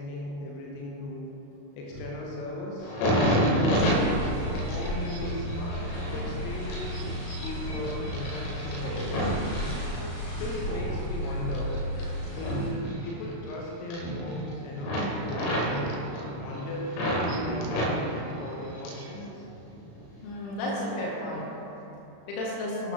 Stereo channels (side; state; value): right; late; 35 ms